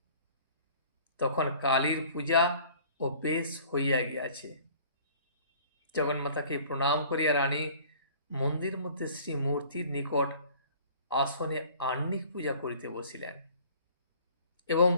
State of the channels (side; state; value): both; inverted; correlation -0.50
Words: তখন কালীর পূজা ও বেশ হইয়া গিয়াছে। জগন্মাতাকে প্রণাম করিয়া রানী মন্দির মধ্যে শ্রীমূর্তির নিকট আসনে আহ্নিক পূজা করিতে বসিলেন এবং